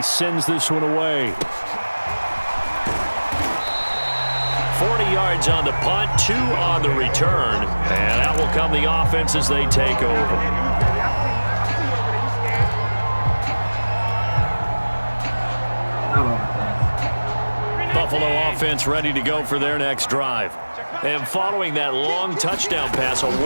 sends this one away. 40 yards on the punt, 2 on the return. And out will come the offense as they take over. Buffalo offense ready to go for their next drive. And following that long touchdown pass, a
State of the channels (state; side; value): inverted; both; correlation -1.00